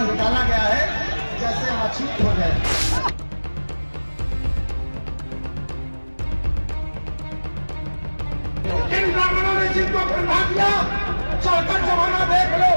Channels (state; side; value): inverted; both; correlation -1.00